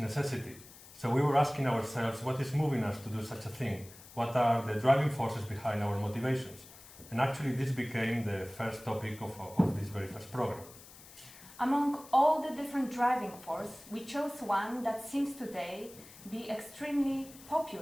So we were asking ourselves, what is moving us to do such a thing? What are the driving forces behind our motivations? And actually, this became the first topic of this very first program. Among all the different driving forces, we chose one that seems today be extremely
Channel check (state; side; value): noise; left; hiss, 19 dB below the sound